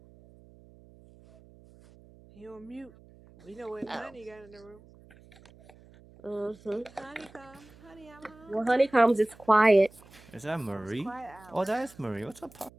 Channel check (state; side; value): noise; right; hum, 24 dB below the sound